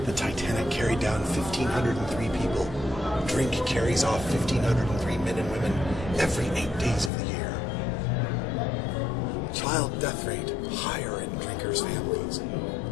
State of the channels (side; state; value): right; drops out; at 7.1 s